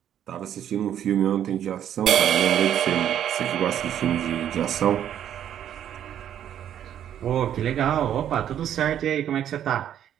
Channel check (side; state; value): left; quieter; 10.3 dB